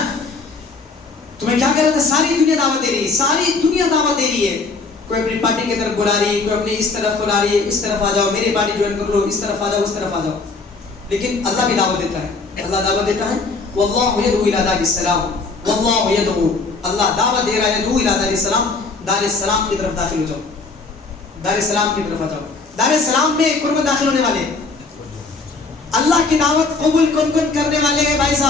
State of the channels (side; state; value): right; quieter; 4.0 dB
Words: تمہیں کیا کہہ رہا تھا؟ ساری دنیا دعوت دے رہی ہے, ساری دنیا دعوت دے رہی ہے. کوئی اپنی پارٹی کی طرف بلا رہی ہے, کوئی اپنی اس طرف بلا رہی ہے, اس طرف آ جاؤ, میری پارٹی جوائن کر لو, اس طرف آ جاؤ, اس طرف آ جاؤ. لیکن اللہ بھی دعوت دیتا ہے, اللہ دعوت دیتا ہے. واللہ یدعو الی دار السلام, واللہ یدعو, اللہ دعوت دے رہا ہے, یدعو الی دار السلام, دار السلام کی طرف داخل ہو جاؤ, دار السلام کی طرف آ جاؤ. دار السلام میں کون کون داخل ہونے والے ہیں؟ اللہ کی دعوت قبول کون کون کرنے والے ہیں بھائی